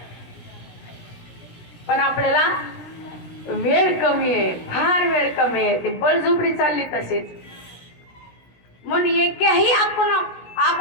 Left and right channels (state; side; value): late; right; 17 ms